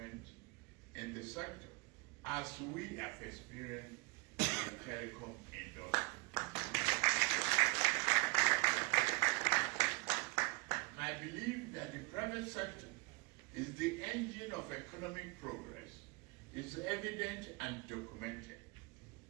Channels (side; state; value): left; quieter; 28.3 dB